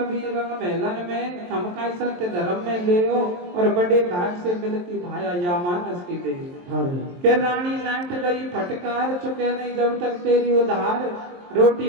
रंग मेलन में, थमका सत्य धर्म में ले और बड़े भाग से मिलती भाया या मानस की दे। हरे के रानी नाट गई फटकार, चुके नहीं जब तक तेरी उधार,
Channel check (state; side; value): late; left; 23 ms